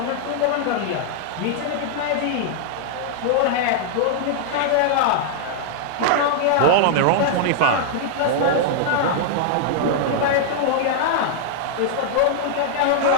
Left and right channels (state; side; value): different; both; correlation -0.01